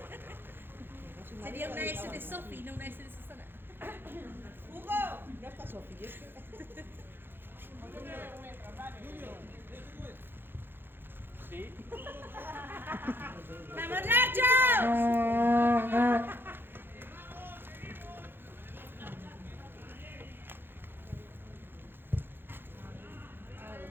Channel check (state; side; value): late; left; 0.10 ms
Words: Sería una S de Sofi, no una S de Susana. ¡Hugo! No está Sofi, es que... Sí. ¡Vamos, Nacho!